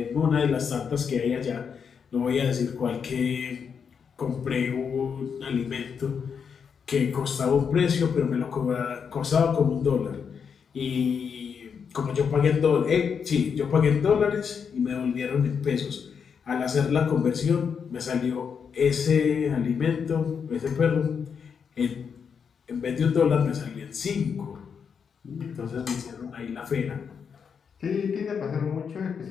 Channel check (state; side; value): quieter; right; 6.6 dB